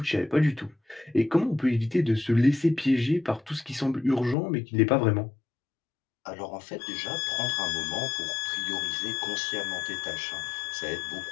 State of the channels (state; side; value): drops out; right; at 4.4 s